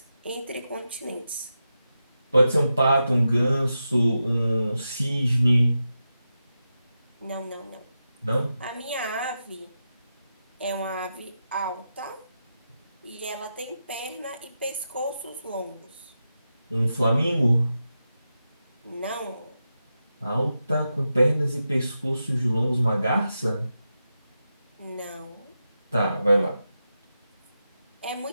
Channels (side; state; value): both; inverted; correlation -0.89